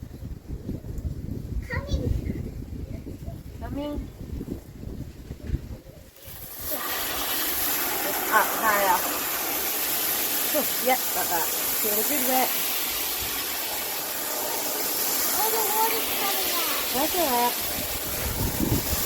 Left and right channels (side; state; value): both; identical; correlation 1.00